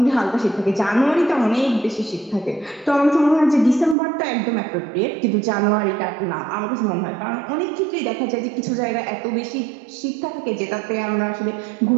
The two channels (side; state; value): left; drops out; at 4.0 s